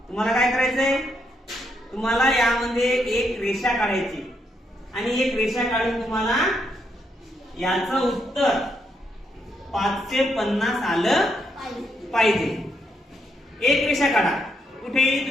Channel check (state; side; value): normal; both; correlation 0.78